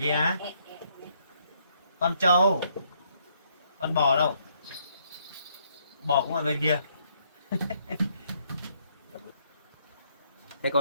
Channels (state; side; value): inverted; both; correlation -0.70